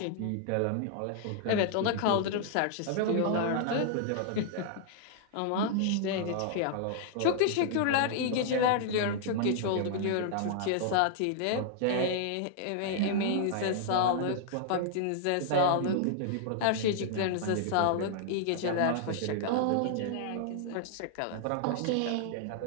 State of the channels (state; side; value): different; both; correlation -0.01